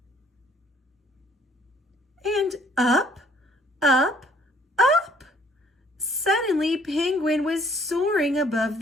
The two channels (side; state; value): both; normal; correlation 0.61